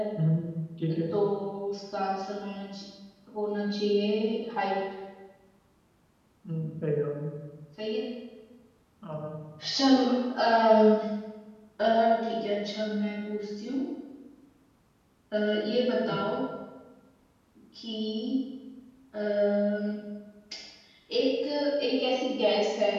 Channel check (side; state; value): both; identical; correlation 1.00